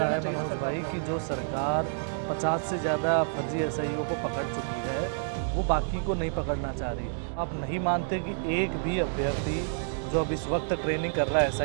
देना है चाहिए ना मनोज सरकार भाई को। कि जो सरकार 50 से ज़्यादा फर्जी एसआईओ को पकड़ चुकी है, वो बाकी को नहीं पकड़ना चाह रही? आप नहीं मानते कि एक भी अभ्यर्थी जो अब इस वक्त ट्रेनिंग कर रहा है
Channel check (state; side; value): silent; left; 59 dB below the other